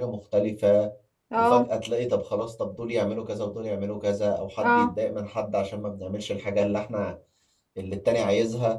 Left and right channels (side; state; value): both; identical; correlation 1.00